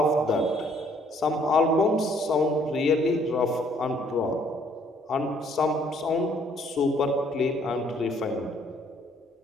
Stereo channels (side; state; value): both; normal; correlation 0.63